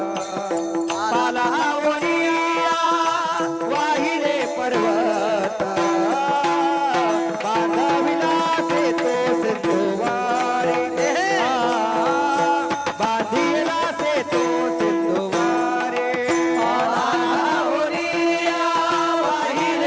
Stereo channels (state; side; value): identical; both; correlation 1.00